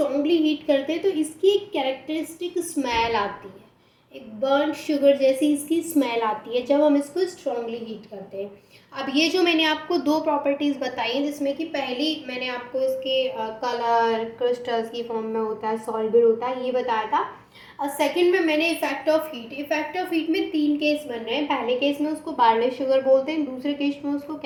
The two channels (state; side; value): identical; both; correlation 1.00